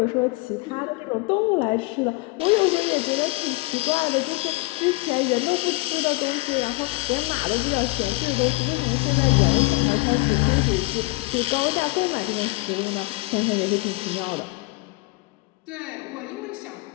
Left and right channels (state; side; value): quieter; right; 23.1 dB